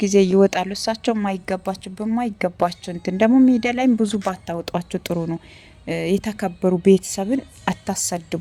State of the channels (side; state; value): both; identical; correlation 1.00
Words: ጊዜ ይወጣሉ እሳቸው ማይገባቸው በማይገባቸው እንትን ደግሞ ሚዲያ ላይም ብዙ ባታወጧቸው ጥሩ ነው። የተከበሩ ቤተሰብን